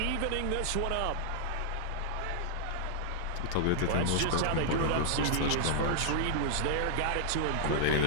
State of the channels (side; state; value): both; different; correlation -0.01